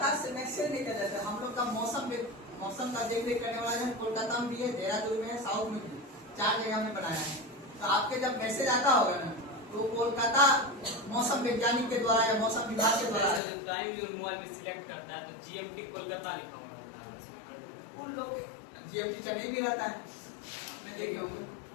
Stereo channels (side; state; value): right; drops out; at 13.4 s